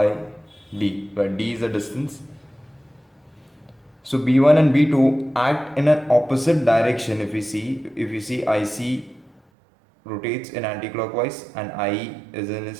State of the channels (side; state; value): left; drops out; at 9.4 s